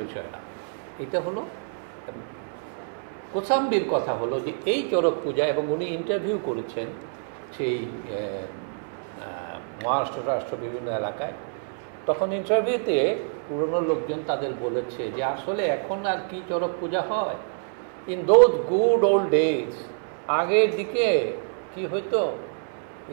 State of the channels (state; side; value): silent; left; 61 dB below the other